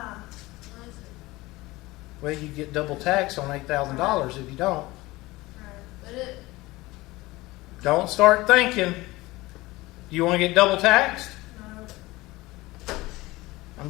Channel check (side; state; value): right; quieter; 20.1 dB